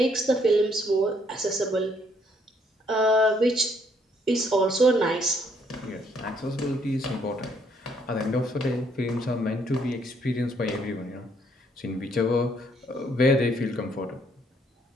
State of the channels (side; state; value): both; normal; correlation 0.68